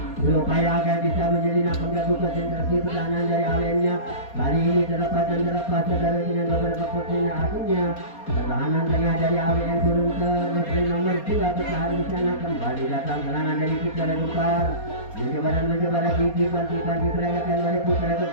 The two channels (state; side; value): late; right; 4.2 ms